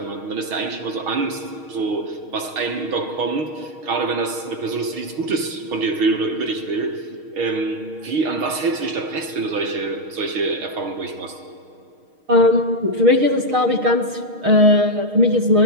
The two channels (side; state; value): left; late; 6.4 ms